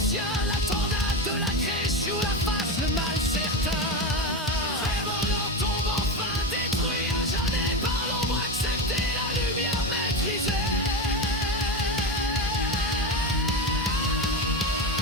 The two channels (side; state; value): both; normal; correlation 0.18